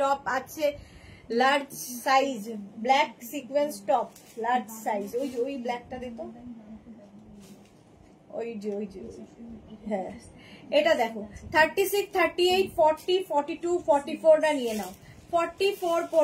আছে, large size, black sequence top large size. ওই যে ওই ব্ল্যাকটা দিত, ওই যে ওই যে, হ্যাঁ এটা দেখো 36, 38, 40, 42, 44 রা নিয়ে নাও 44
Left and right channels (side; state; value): both; identical; correlation 1.00